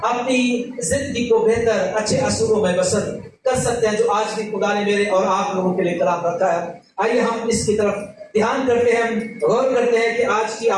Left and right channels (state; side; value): identical; both; correlation 1.00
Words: اپنی زندگی کو بہتر اچھے اصولوں میں بسر کر سکتے ہیں، جو آج بھی خدا نے میرے اور آپ لوگوں کے لیے کلام رکھا ہے. آئیے ہم اس کی طرف دھیان کرتے ہیں، غور کرتے ہیں کہ آج کی